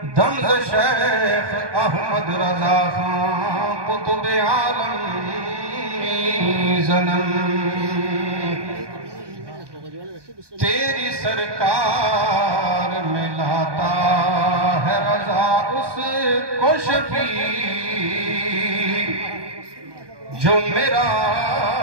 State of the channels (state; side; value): late; left; 1.2 ms